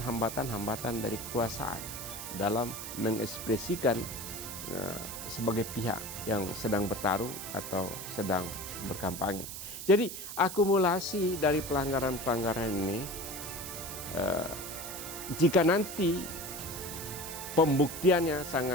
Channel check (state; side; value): noise; right; hiss, 8 dB below the sound